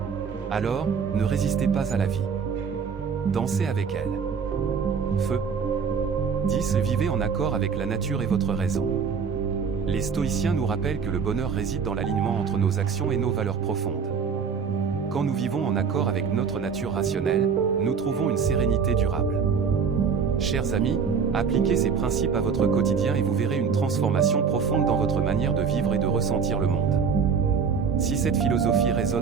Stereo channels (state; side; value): quieter; left; 6.2 dB